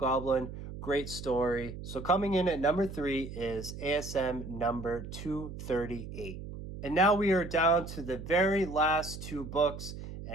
Great story. So coming in at number 3 is ASM number 238. And now we are down to the very last 2 books,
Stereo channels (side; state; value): right; noise; hum, 10 dB below the sound